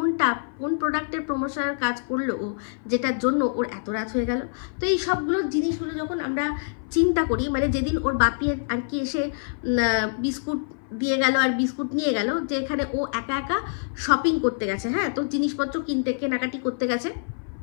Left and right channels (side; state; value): right; silent; 57 dB below the other